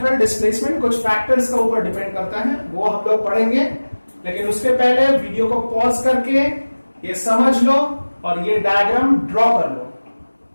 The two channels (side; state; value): both; inverted; correlation -1.00